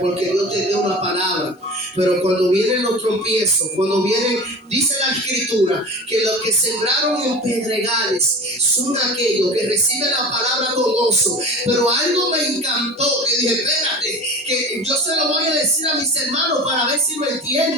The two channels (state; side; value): normal; both; correlation 0.35